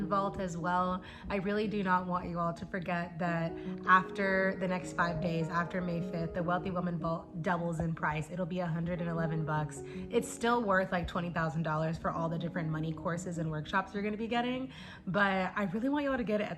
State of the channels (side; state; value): both; identical; correlation 1.00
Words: Vault as well. I really do not want you all to forget that after the next 5 days, after May 5th, the Wealthy Woman Vault doubles in price. It'll be $111. It's still worth like $20,000 for all the different money courses and workshops you're gonna be getting, but I really want you all to get it